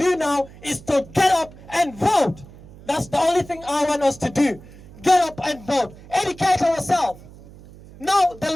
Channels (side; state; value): right; noise; hum, 20 dB below the sound